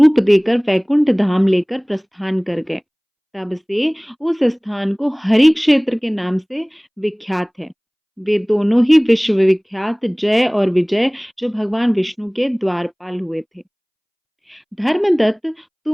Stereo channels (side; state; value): both; identical; correlation 1.00